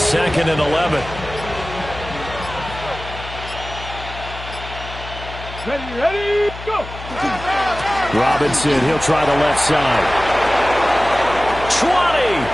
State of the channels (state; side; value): noise; left; hum, 12 dB below the sound